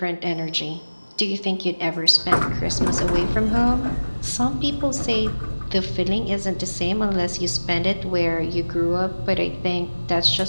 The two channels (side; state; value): both; inverted; correlation -1.00